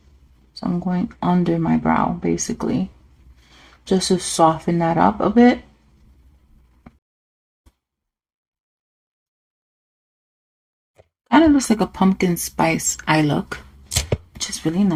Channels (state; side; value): identical; both; correlation 1.00